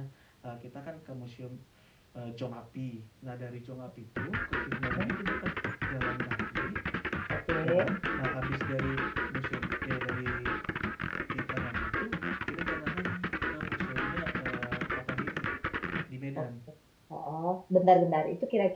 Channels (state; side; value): identical; both; correlation 1.00